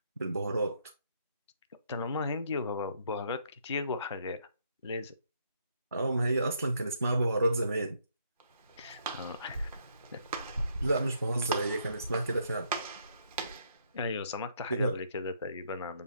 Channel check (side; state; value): both; inverted; correlation -0.71